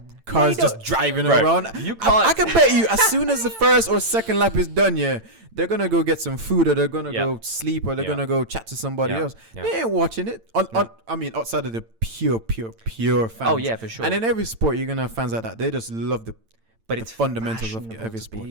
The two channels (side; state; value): left; late; 8.9 ms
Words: cars just driving around. You can't. I can bet you, as soon as the first or second lap is done, they're gonna go get some food, or they're gonna go sleep, or they're gonna go chat to somebody else. Yeah. They ain't watching it. I mean, outside of the pure fans. Oh yeah, for sure. And in every sport, you're gonna have fans like that. They just love the it's fundamentals of every to sport.